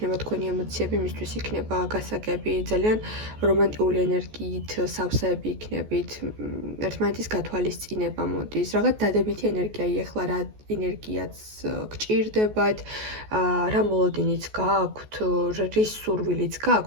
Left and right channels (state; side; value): late; left; 14 ms